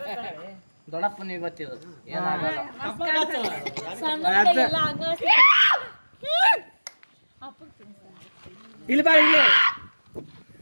ದೊಡ್ಡಪ್ಪನ ಇವತ್ತಿರೋದು ಏನಾಗಲ್ಲ. ಇಲ್ಲಿ ಬಾ, ಇಲ್ಲಿ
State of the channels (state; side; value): inverted; both; correlation -1.00